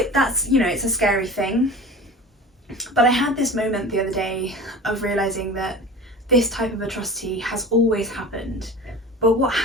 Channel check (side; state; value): both; normal; correlation 0.36